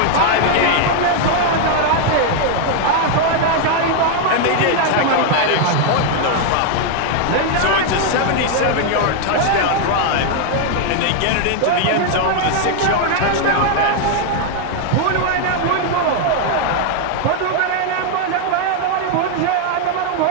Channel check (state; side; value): different; both; correlation 0.00